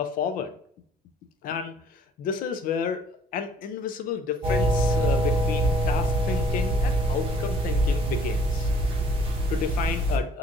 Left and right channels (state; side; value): normal; both; correlation 0.58